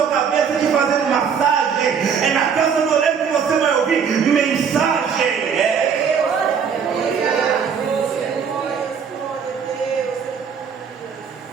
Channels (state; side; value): quieter; left; 6.8 dB